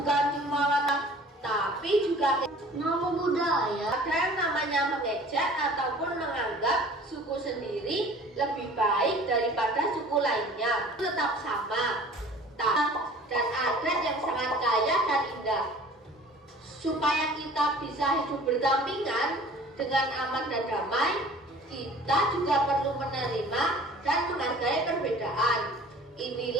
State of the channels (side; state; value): both; normal; correlation 0.47